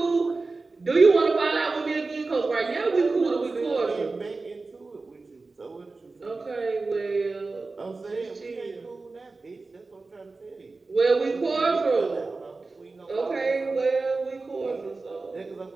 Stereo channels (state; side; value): quieter; left; 3.7 dB